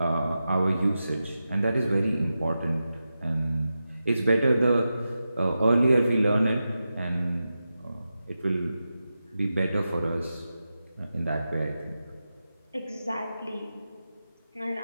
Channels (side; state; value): both; inverted; correlation -0.91